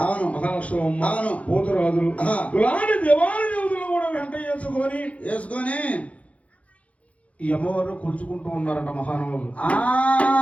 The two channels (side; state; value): right; late; 0.065 ms